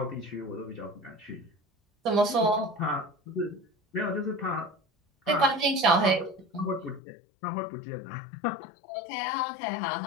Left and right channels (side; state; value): right; drops out; at 7.0 s